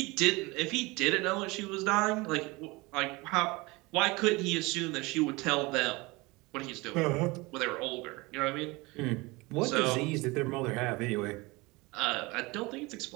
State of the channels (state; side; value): quieter; left; 23.8 dB